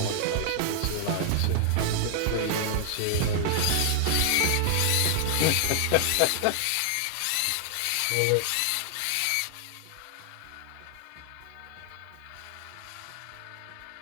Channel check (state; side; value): different; both; correlation 0.00